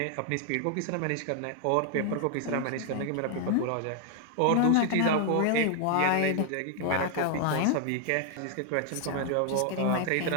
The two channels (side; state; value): both; different; correlation 0.00